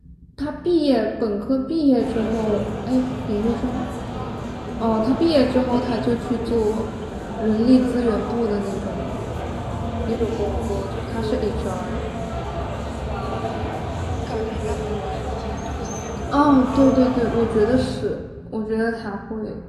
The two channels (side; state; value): both; identical; correlation 1.00